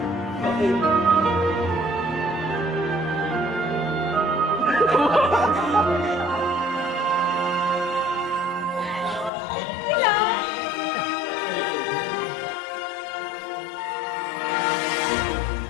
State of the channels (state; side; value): drops out; right; at 9.3 s